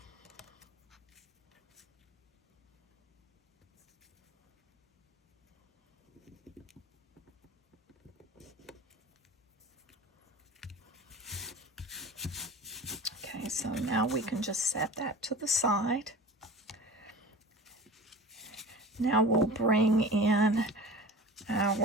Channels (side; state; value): both; normal; correlation 0.37